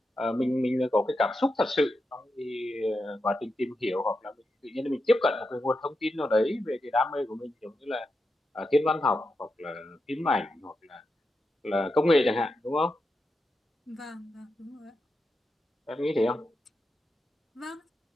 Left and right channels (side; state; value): both; normal; correlation 0.87